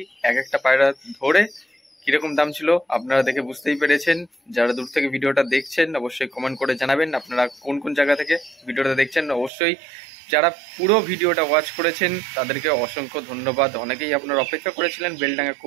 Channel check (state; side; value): drops out; left; at 9.5 s